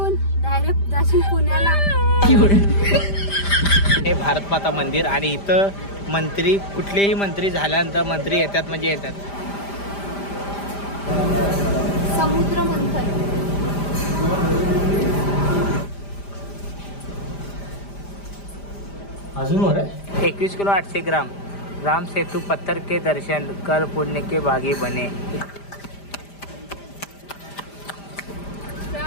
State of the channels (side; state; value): right; late; 5.0 ms